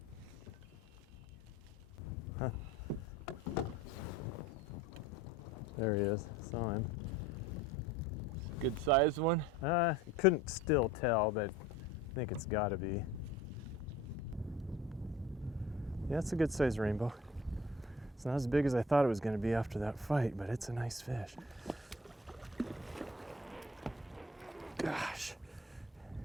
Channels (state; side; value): normal; both; correlation 0.46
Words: Huh. There he is. Saw him. Good sized one? Couldn't still tell, but I think it's got to be. Yeah, it's a good sized rainbow. It's not as big as I thought it was going to be after that fight, but it's a nice fish. Gosh.